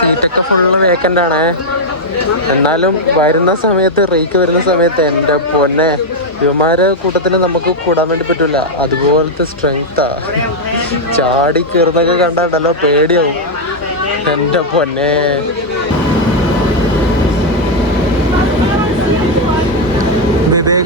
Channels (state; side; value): normal; both; correlation 0.00